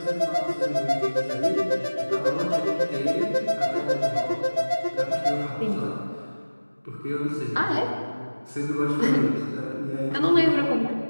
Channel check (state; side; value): inverted; both; correlation -1.00